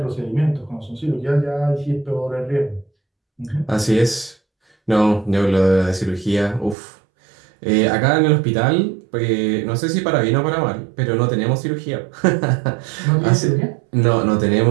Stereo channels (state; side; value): drops out; left; at 6.8 s